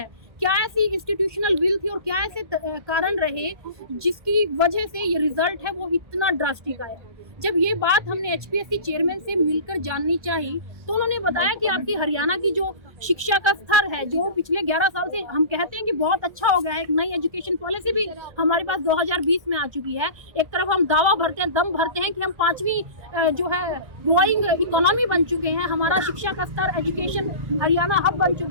क्या ऐसी इंस्टीट्यूशनल विल थी और क्या ऐसे कारण रहे जिसकी वजह से ये रिजल्ट है वो इतना ड्रास्टिक आया। जब ये बात हमने एचपीएससी चेयरमैन से मिलकर जाननी चाहिए तो उन्होंने बताया कि आपकी हरियाणा की जो शिक्षा का स्तर है, जो पिछले 11 साल से हम कहते हैं कि बहुत अच्छा हो गया है, एक नई एजुकेशन पॉलिसी भी हमारे पास 2020 में आ चुकी है। एक तरफ हम दावा भरते हैं, दम भरते हैं कि हम 5वीं जो है ग्रोइंग इकोनॉमी बन चुके हैं, हमारा शिक्षा का स्तर एजुकेशन हरियाणा हब बन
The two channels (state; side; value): late; left; 1.4 ms